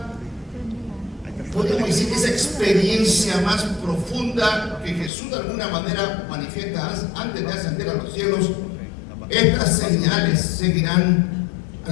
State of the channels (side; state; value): right; drops out; at 5.1 s